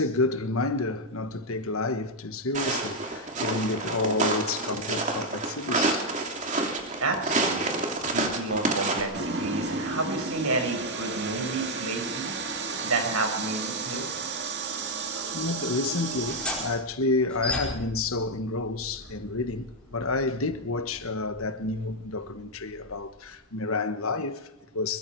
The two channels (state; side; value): normal; both; correlation 0.01